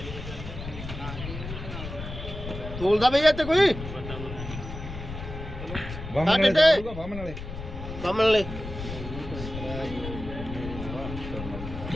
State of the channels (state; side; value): noise; left; rumble, 9 dB below the sound